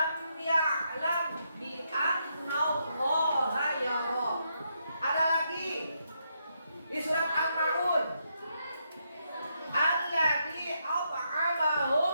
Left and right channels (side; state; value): both; inverted; correlation -0.79